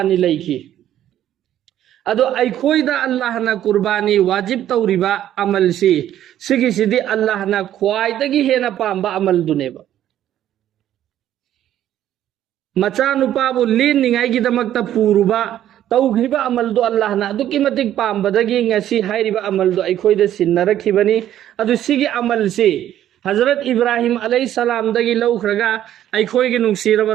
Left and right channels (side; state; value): left; quieter; 11.7 dB